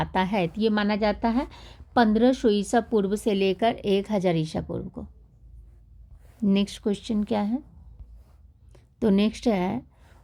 है? तो ये माना जाता है 1500 ईसा पूर्व से लेकर 1000 ईसा पूर्व को। नेक्स्ट क्वेश्चन क्या है? तो नेक्स्ट है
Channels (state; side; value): identical; both; correlation 1.00